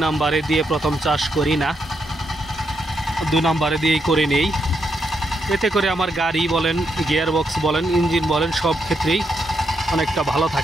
নাম্বারে দিয়ে প্রথম চাষ করি না, 2 নাম্বারে দিয়েই করে নেই। এতে করে আমার গাড়ি বলেন, গিয়ার বক্স বলেন, ইঞ্জিন বলেন, সব ক্ষেত্রেই অনেকটা ভালো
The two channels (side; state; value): both; normal; correlation 0.80